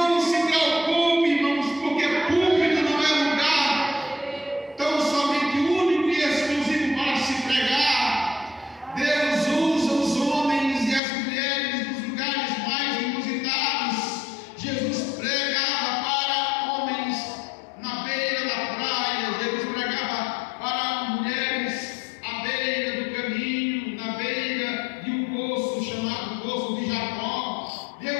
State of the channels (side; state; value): right; drops out; at 11.0 s